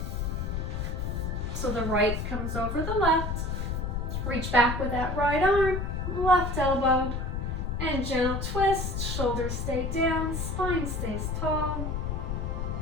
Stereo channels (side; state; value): left; noise; rumble, 2 dB below the sound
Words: So the right comes over the left. Reach back with that right arm, left elbow, and gentle twist. Shoulders stay down, spine stays tall.